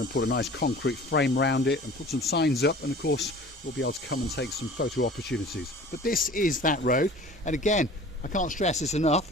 to put a nice concrete frame around it and put some signs up, and of course we'll be able to come and take some photo opportunities. But this is that road, and again, I can't stress this enough,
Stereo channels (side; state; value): both; normal; correlation 0.44